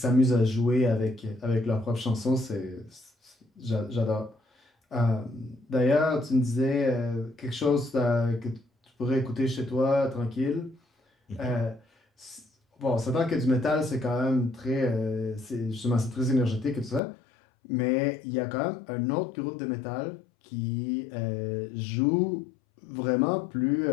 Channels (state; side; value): drops out; right; at 17.0 s